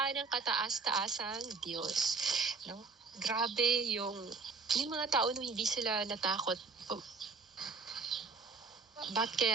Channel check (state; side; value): quieter; left; 4.5 dB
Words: ng kataas-taasang Diyos. No? Grabe yung mga tao no, hindi sila natakot. Ba't